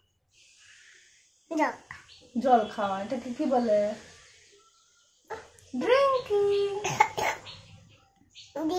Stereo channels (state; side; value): identical; both; correlation 1.00